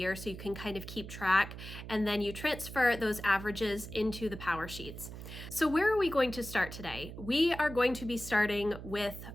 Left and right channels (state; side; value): noise; right; hum, 11 dB below the sound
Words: so you can kind of keep track, and then you transfer those averages into the power sheets. So where are we going to start today? We are going to be starting with